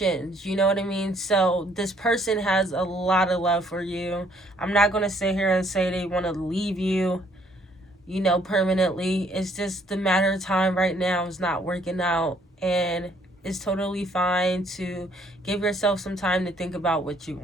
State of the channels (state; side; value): normal; both; correlation 0.65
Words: you know what I mean? So this person has a lot of love for you. I'm not going to sit here and say they want to leave you, you know, permanently. It's just the matter of time right now is not working out, and it's totally fine to give yourself some time to think about what you